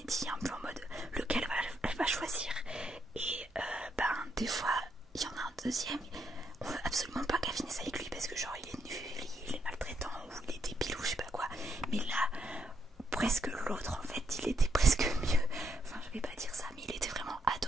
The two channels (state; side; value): normal; both; correlation 0.77